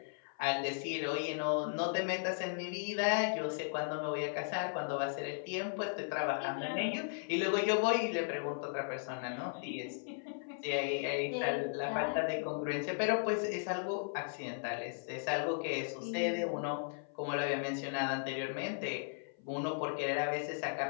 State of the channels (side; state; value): right; silent; 53 dB below the other